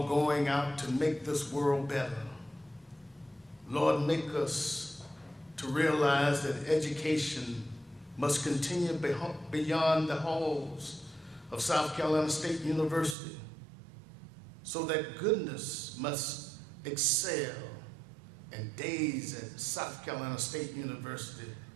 going out to make this world better. Lord, make us to realize that education must continue beyond the halls of South Carolina State University, so that goodness must excel, and days at South Carolina State University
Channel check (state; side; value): drops out; left; at 13.2 s